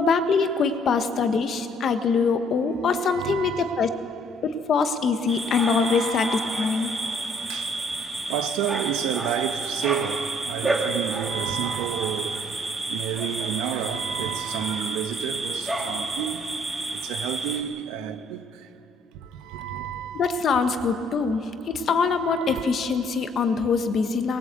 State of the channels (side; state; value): both; normal; correlation 0.63